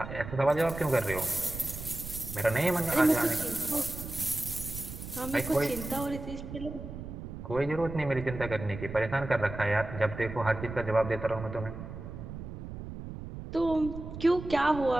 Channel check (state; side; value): noise; right; rumble, 9 dB below the sound